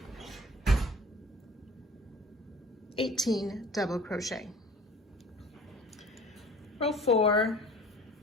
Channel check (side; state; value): both; normal; correlation 0.46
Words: 18 double crochet. Row 4,